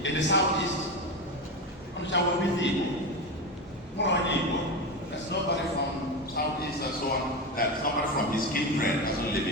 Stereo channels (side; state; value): both; normal; correlation 0.18